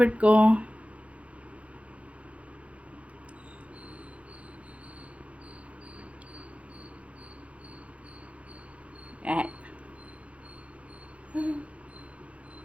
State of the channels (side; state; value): left; late; 0.063 ms